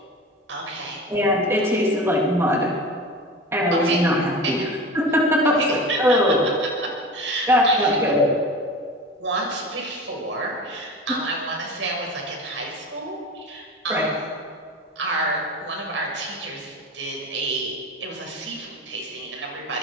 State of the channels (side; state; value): both; normal; correlation 0.33